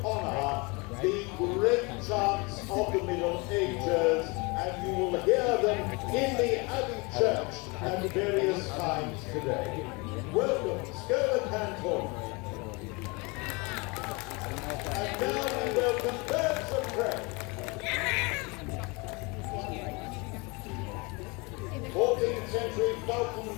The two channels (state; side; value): quieter; right; 27.8 dB